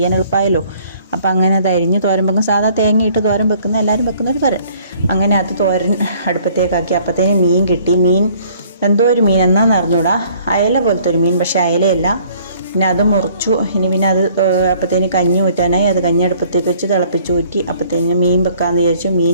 എളുപ്പമായല്ലോ. അപ്പം അങ്ങനെ അത് അരിഞ്ഞ് തോരൻ വെക്കും. സാധാ തേങ്ങയിട്ട് തോരൻ വെക്കുന്ന എല്ലാവരും വെക്കുന്ന ഒരു തോരൻ. അങ്ങനെ അത് തോരൻ അടുപ്പത്തേക്കാക്കി. അപ്പത്തേന് മീൻ കിട്ടി. മീൻ എന്തോ ഒരു മീൻ എന്നാന്ന് അറിഞ്ഞൂടാ. അയല പോലത്തെ ഒരു മീൻ, പക്ഷെ അയലയല്ല. പിന്നെ അത് മുറിച്ചു. ഇനി പിന്നെ അത് അപ്പത്തേന് കഞ്ഞി ഊറ്റാനായി. അത് കഞ്ഞി അടുപ്പത്തേക്ക് വെച്ച് തിളപ്പിച്ച് ഊറ്റി. അപ്പത്തേന് മീൻ വെക്കാമെന്ന് വിചാരിച്ചു.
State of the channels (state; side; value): inverted; both; correlation -0.58